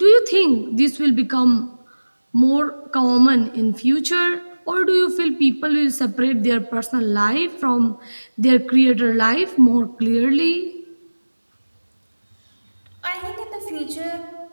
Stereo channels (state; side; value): inverted; both; correlation -1.00